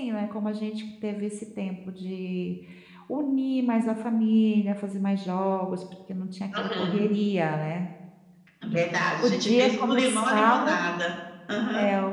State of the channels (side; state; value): both; identical; correlation 1.00